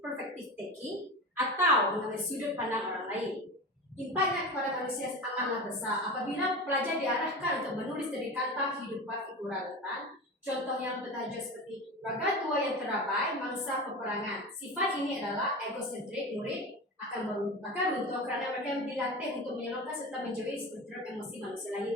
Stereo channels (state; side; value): normal; both; correlation 0.28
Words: perfective thinking atau mengambil sudut pandang orang lain. Impaknya kepada manusia amatlah besar apabila pelajar diarahkan untuk menulis dari kata kehidupan figuran rentan. Contoh yang bertajuk seperti Raga Tua yang Terabai, Mangsa Peperangan. Sifat ini adalah egosentrik. Murid akan runtuh kerana mereka dilatih untuk menyalurkan serta menjauhi spektrum emosi manusia